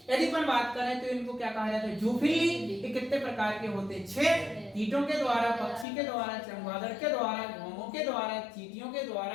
यदि अपन बात करें तो इनको क्या कहा जाता है, जूफिली। ये कितने प्रकार के होते हैं, 6, कीटों के द्वारा, पक्षी के द्वारा, चमगादड़ के द्वारा, घोंघों के द्वारा, चींटियों के द्वारा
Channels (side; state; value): right; drops out; at 5.9 s